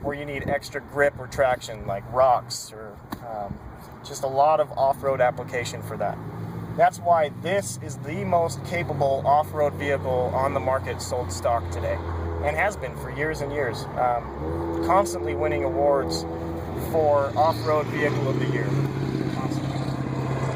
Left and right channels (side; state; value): both; identical; correlation 1.00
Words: where you need extra grip or traction, like rocks or just a lot of off-road application for that. That's why this is the most capable off-road vehicle on the market sold stock today, and has been for years and years. Constantly winning awards for off-road vehicle of the year. Constantly.